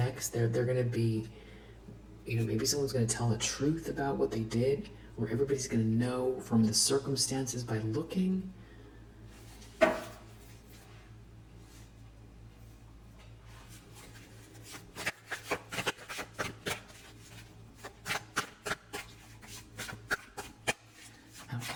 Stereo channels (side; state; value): both; identical; correlation 1.00